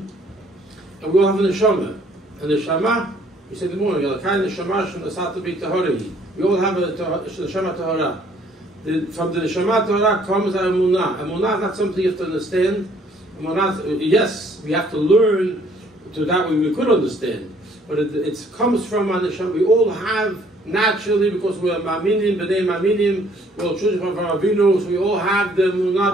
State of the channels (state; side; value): normal; both; correlation 0.61